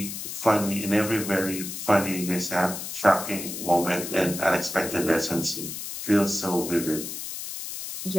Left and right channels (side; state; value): left; noise; hiss, 7 dB below the sound